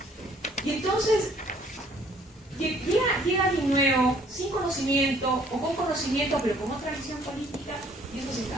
Y entonces llega alguien nuevo, sin conocimiento, o con conocimiento, pero con otra visión política, y eso se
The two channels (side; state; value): both; normal; correlation 0.60